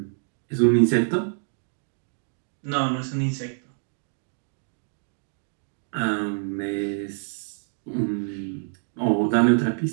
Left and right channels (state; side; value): silent; left; digital silence